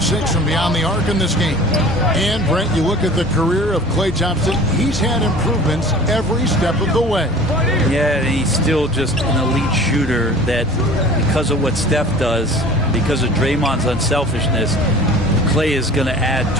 6 from beyond the arc in this game. And, Brent, you look at the career of Klay Thompson, he's had improvements every step of the way. Yeah, he's still just an elite shooter that, because of what Steph does, because of Draymond's unselfishness, Klay is going to add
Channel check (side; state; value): both; normal; correlation 0.43